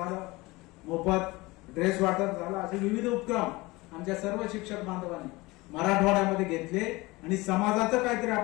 मोफत ड्रेस वाटप झालं, असे विविध उपक्रम आमच्या सर्व शिक्षक बांधवांनी मराठवाड्यामध्ये घेतले आणि समाजाचं काहीतरी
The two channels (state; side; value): quieter; right; 22.2 dB